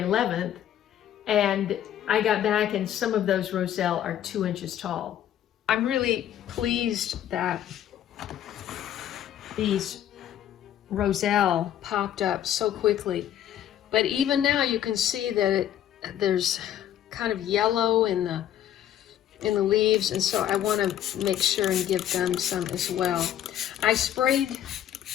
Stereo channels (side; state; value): right; quieter; 11.2 dB